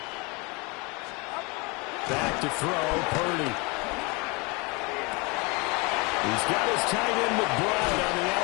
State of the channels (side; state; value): right; quieter; 28.2 dB